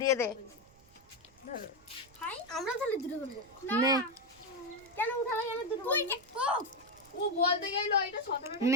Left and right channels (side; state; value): right; noise; rumble, 28 dB below the sound